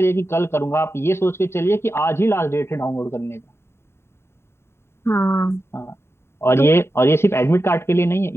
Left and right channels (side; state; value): right; late; 0.12 ms